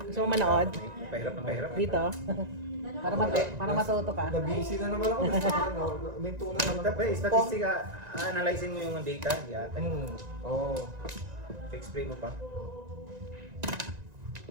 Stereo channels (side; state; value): left; late; 1.9 ms